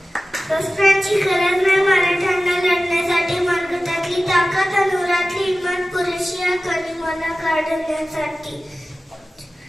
शस्त्रांची गरज नाही मराठ्यांना लढण्यासाठी मनगटातली ताकद अनुरातली हिंमत पुरेशी आहे कलिंगला काढण्यासाठी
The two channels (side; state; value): both; normal; correlation 0.96